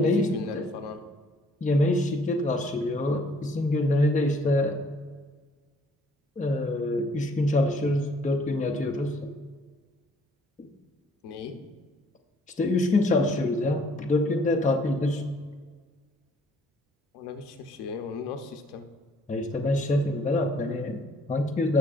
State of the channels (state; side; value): normal; both; correlation 0.62